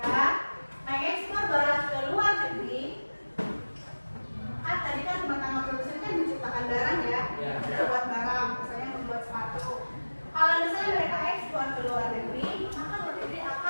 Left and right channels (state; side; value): inverted; both; correlation -1.00